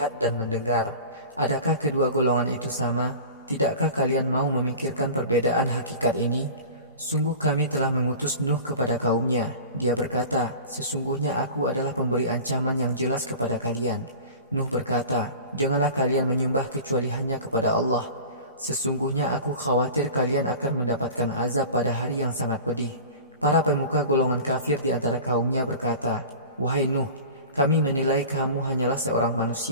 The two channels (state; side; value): inverted; both; correlation -0.37